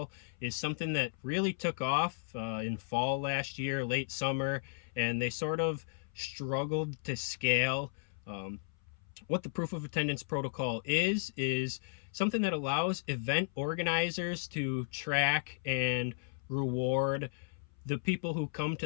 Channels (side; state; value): right; silent; 55 dB below the other